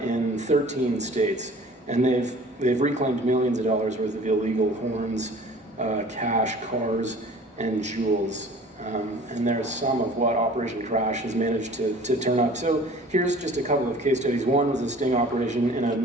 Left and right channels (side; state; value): both; normal; correlation 0.47